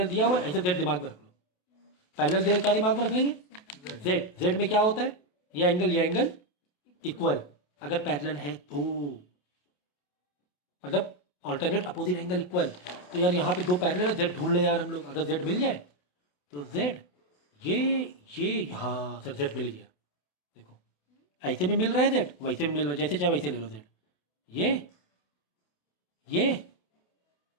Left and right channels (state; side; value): late; right; 28 ms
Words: दिया हुआ है ऐसे जेड दिमाग में रख लो। पैरेलल दे क्या दिमाग में रख लेंगे, जेड, जेड में क्या होता है, ये एंगल इक्वल, अगर पैरेलल है तो मतलब ऑल्टरनेट अपोजिट एंगल इक्वल। तो यार यहाँ पे दो पैरेलल है, जेड ढूंढ ले यार हम लोग, अगर जेड मिल जाए तो जेड ये हाँ सर जेड मिल गया। देखो ऐसे भी मिल रहा है जेड, वैसे भी मिल रहा है, जैसे चाहे वैसे ले लो जेड। ये